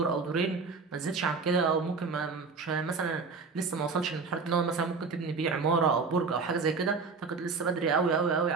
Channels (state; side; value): quieter; left; 4.7 dB